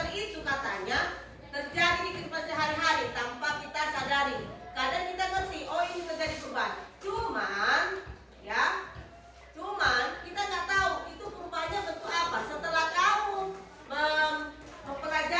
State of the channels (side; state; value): both; identical; correlation 1.00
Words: itu katanya terjadi di kehidupan sehari-hari tanpa kita sadari. Kadang kita ngerti, oh ini terjadi perubahan. Cuman kita nggak tahu itu perubahannya bentuk apa. Setelah kamu